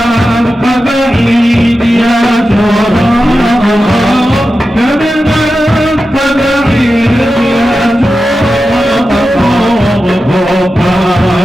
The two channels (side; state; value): both; normal; correlation 0.92